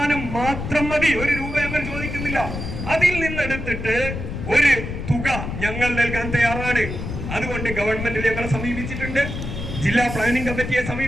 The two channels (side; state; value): left; noise; rumble, 6 dB below the sound